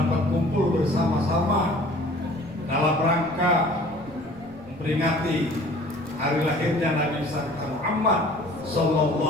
kumpul bersama-sama dalam rangka memperingati hari lahirnya Nabi besar Muhammad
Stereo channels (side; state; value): right; noise; rumble, 26 dB below the sound